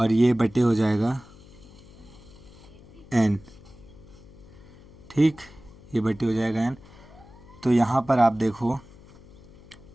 ये बटे हो जाएगा n, ठीक, ये बटे हो जाएगा n। तो यहाँ पर आप देखो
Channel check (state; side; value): noise; left; hum, 22 dB below the sound